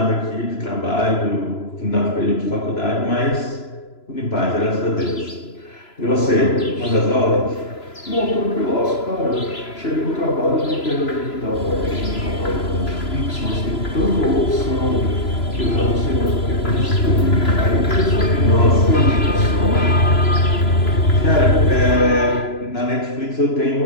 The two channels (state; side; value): late; right; 3.0 ms